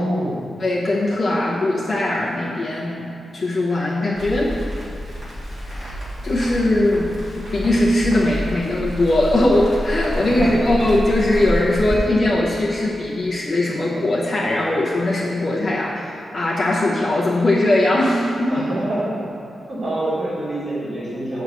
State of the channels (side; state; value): both; normal; correlation 0.91